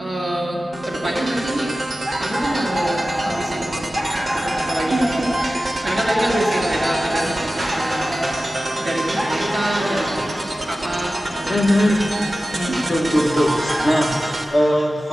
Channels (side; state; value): both; normal; correlation 0.95